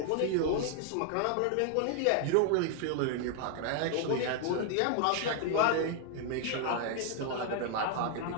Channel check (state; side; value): different; both; correlation 0.00